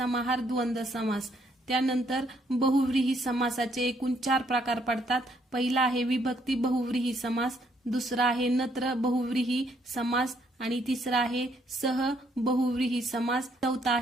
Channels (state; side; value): normal; both; correlation 0.70